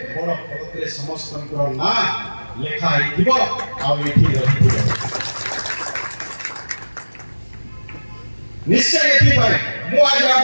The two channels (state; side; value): inverted; both; correlation -1.00